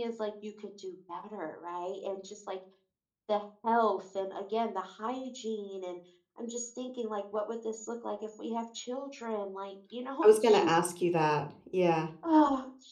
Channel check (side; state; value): both; identical; correlation 1.00